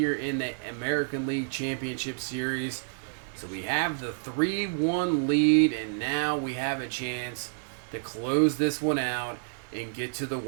in the American League Championship Series. So we have the 3-1 lead, and now we have a chance to close this one out and get to the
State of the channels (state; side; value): silent; left; digital silence